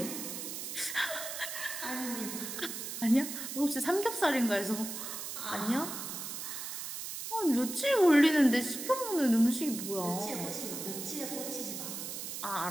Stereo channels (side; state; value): right; noise; hiss, 6 dB below the sound